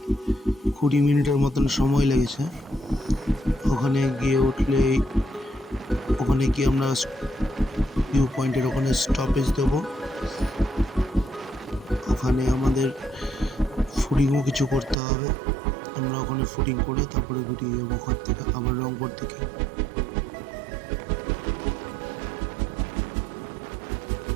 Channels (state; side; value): drops out; left; at 15.0 s